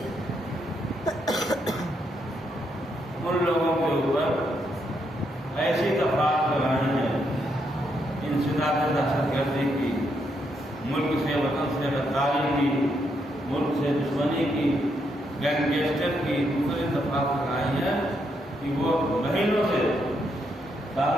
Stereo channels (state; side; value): normal; both; correlation 0.78